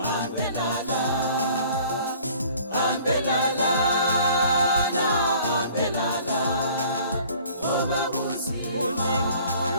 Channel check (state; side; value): inverted; both; correlation -0.52